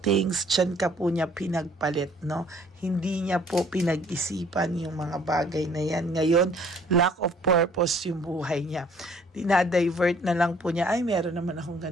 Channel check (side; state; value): both; normal; correlation 0.58